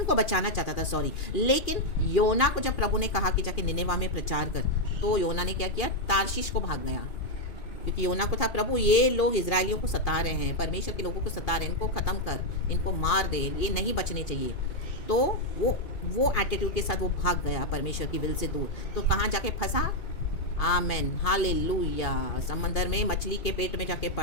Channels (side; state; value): right; late; 2.4 ms